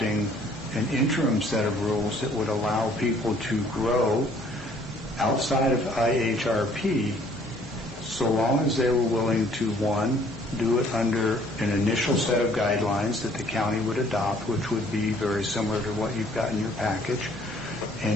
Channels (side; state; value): both; normal; correlation 0.59